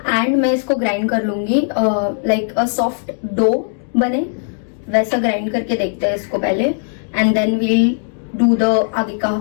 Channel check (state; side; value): silent; right; digital silence